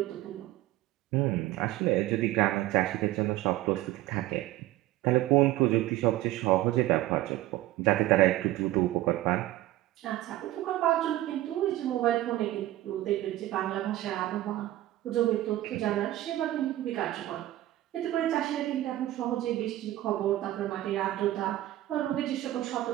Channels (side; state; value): left; quieter; 15.5 dB